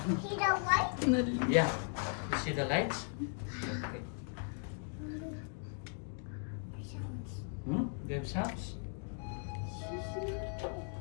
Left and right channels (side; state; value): right; silent; 53 dB below the other